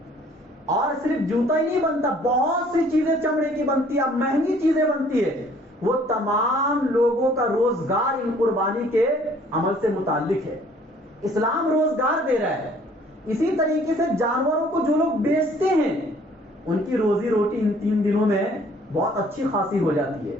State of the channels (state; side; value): normal; both; correlation 0.57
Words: اور صرف جوتا ہی نہیں بنتا، بہت سی چیزیں چمڑے کی بنتی ہے، مہنگی چیزیں بنتی ہے۔ وہ تمام لوگوں کا روزگار ان قربانی کے عمل سے متعلق ہے۔ اسلام روزگار دے رہا ہے۔ اسی طریقے سے جانوروں کو جو لوگ بیچتے ہیں ان کی روزی روٹی ان 3 دنوں میں بہت اچھی خاصی ہو جاتی ہے۔